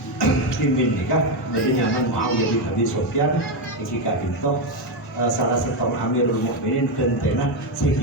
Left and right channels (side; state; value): both; normal; correlation 0.08